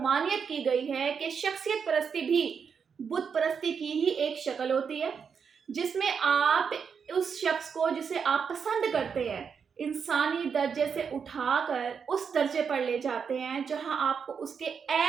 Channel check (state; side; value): quieter; left; 6.4 dB